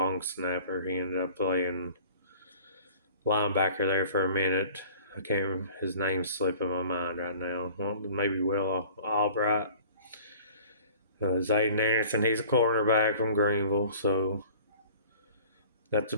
snapper. He ended up playing linebacker there for a minute. I can't remember, his name's slipping my mind right now. Well, maybe Will Albright. Zayden Anderson, he's a cornerback from Greenville, so that's a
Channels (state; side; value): inverted; both; correlation -0.47